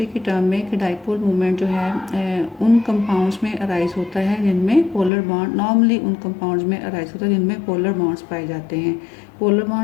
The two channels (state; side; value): drops out; right; at 5.1 s